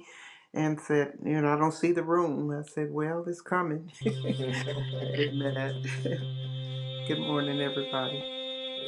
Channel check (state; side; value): identical; both; correlation 1.00